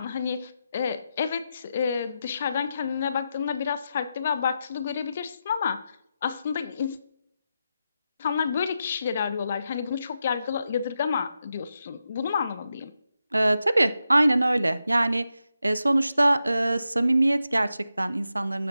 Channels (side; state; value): both; inverted; correlation -0.88